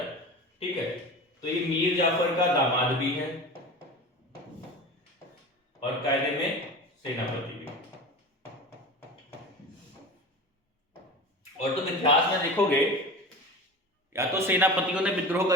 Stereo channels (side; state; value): both; normal; correlation 0.32